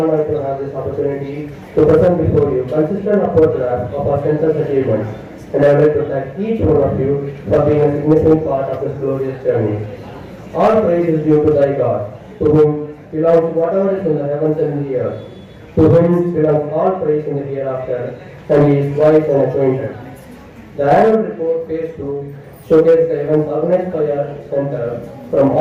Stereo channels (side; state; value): both; identical; correlation 1.00